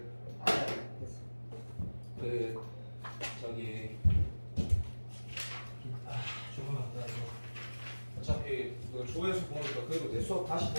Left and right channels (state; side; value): inverted; both; correlation -1.00